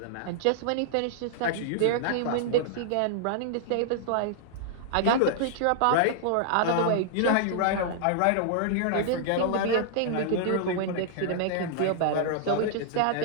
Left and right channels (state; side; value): different; both; correlation -0.01